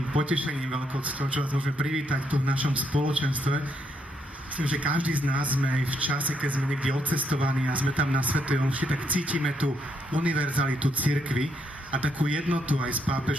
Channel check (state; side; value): normal; both; correlation 0.76